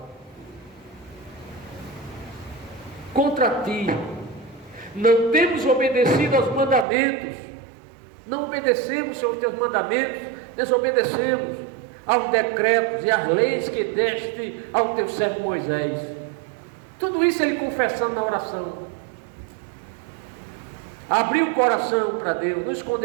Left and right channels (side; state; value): left; drops out; at 6.9 s